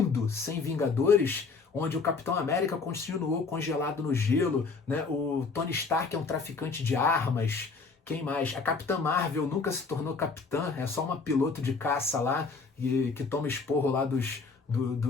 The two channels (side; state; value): right; quieter; 4.5 dB